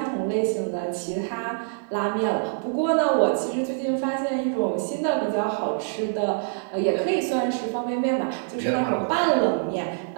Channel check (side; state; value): left; silent; digital silence